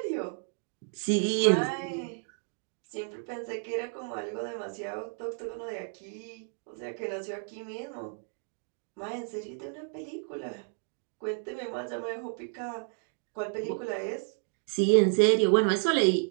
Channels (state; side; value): silent; left; 57 dB below the other